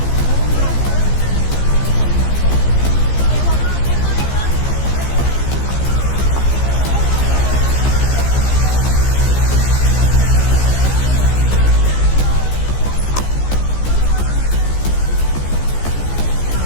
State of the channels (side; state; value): right; late; 15 ms